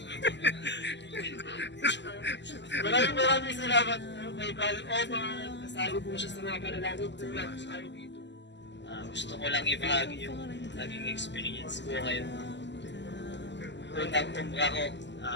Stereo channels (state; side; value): late; right; 0.52 ms